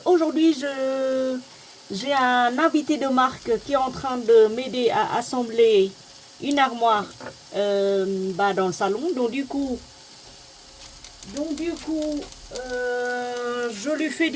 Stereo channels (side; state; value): both; identical; correlation 1.00